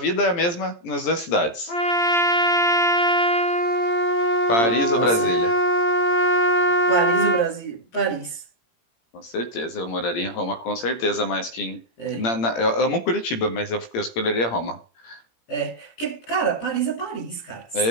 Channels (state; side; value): late; right; 17 ms